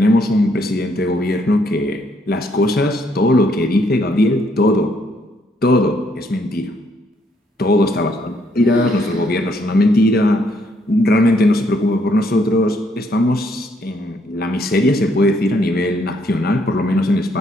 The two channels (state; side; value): normal; both; correlation 0.71